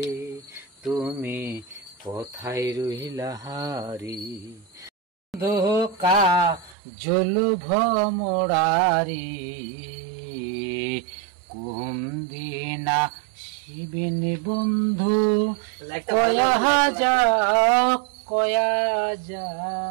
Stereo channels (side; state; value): left; drops out; at 6.8 s